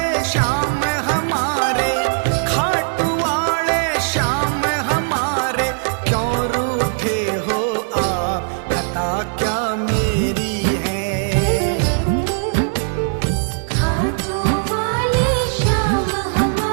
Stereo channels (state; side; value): silent; left; digital silence